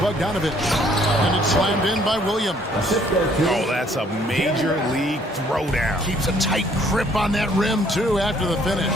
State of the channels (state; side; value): normal; both; correlation 0.62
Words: And it's slammed in by Williams. Oh, that's a major league throwdown. Keeps a tight grip on that rim, too, after the finish.